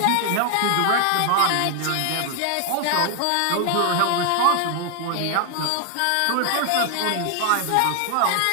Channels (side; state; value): both; different; correlation 0.00